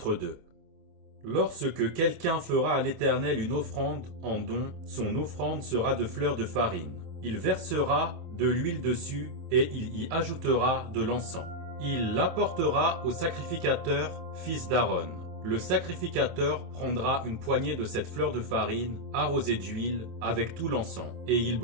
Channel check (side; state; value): left; late; 27 ms